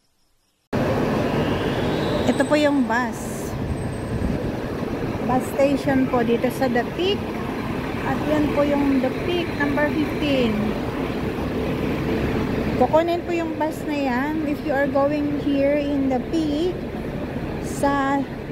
Ito po yung bus station po dito sa The Peak. At yan po yung The Peak number 15. Kukunin po yung bus na yan if you are going here in The Peak sa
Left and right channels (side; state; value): both; identical; correlation 1.00